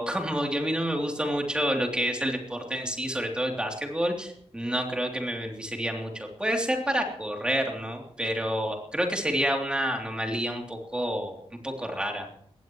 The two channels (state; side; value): normal; both; correlation 0.81